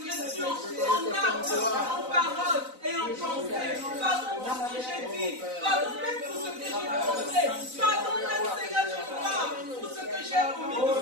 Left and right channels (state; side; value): late; left; 4.0 ms